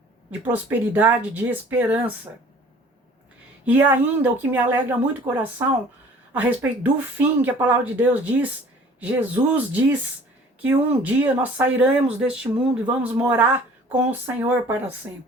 de prosperidade, de esperança. E ainda, o que me alegra muito o coração, a respeito do fim que a palavra de Deus diz, Jesus diz que um dia nós sairemos deste mundo e vamos morar com o Senhor para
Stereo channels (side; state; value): both; normal; correlation 0.50